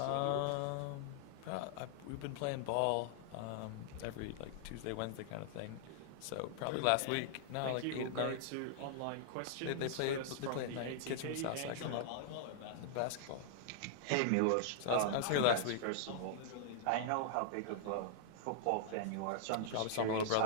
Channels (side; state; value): both; different; correlation -0.01